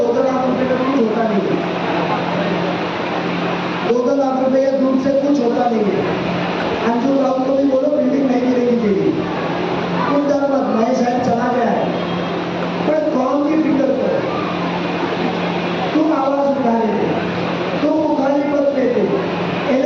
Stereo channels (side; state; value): both; identical; correlation 1.00